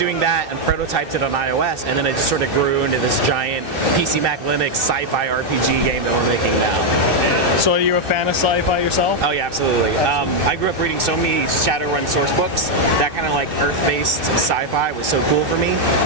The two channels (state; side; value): late; left; 2.6 ms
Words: that and prototyped it on iOS, and then it just sort of grew into this giant PC Mac Linux sci-fi RPG game that we're making now. So are you a fan of sci-fi yourself? Oh yeah, absolutely. I grew up reading so many Shadowrun source books. That kind of like Earth-based sci-fi was so cool for me.